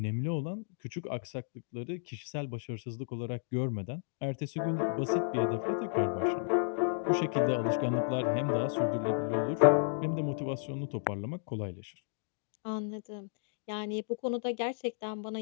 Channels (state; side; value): silent; right; digital silence